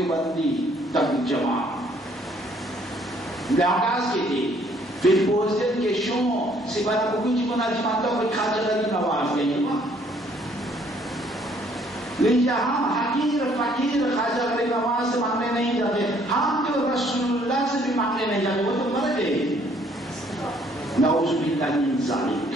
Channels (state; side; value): normal; both; correlation 0.63